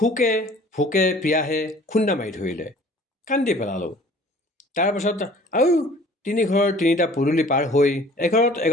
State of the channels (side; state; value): both; normal; correlation 0.50